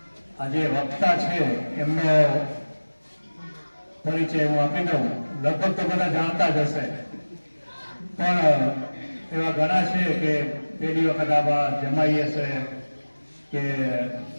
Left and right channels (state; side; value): inverted; both; correlation -1.00